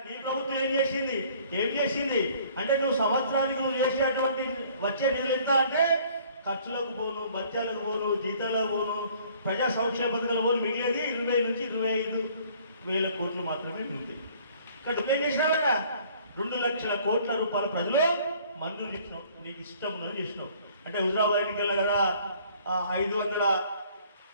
నీ ప్రభుత్వం ఏం చేసింది అంటే నువ్వు సంవత్సరానికి నువ్వు చేసేటువంటి వచ్చే నిధులు ఎంత అంటే ఖర్చులకు పోను, బత్యాలకు పోను, జీతాలకు పోను, ప్రజా సంక్షేమ పథకాలు పోను, మిగిలేది 20 నుంచి 25 వేల కోట్లు మాత్రమే ఉంది. ఇక్కడ నువ్వేం చేసినావు కదా, 2 లక్షల కోట్ల రూపాయల ప్రజలు మంజూరు చేసినావు, నీకు ఇష్టం ఉన్నది చేసినావు. అంటే హుజరాబాద్ ఎన్నికల్లో కదా 500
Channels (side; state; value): both; inverted; correlation -0.56